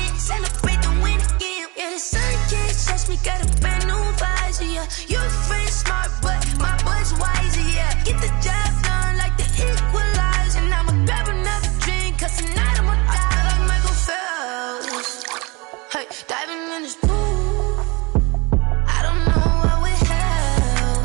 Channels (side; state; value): left; quieter; 26.4 dB